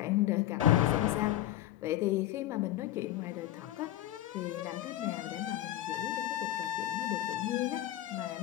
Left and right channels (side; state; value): right; quieter; 13.7 dB